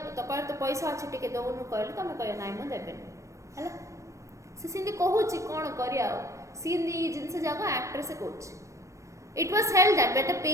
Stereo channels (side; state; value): left; late; 0.15 ms